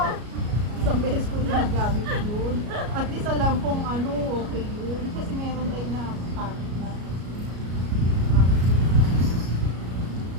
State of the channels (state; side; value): late; left; 33 ms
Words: Isang beses ko na nagamit yun. At least alam kong ano, okay yun. Kasi meron tayo na pack na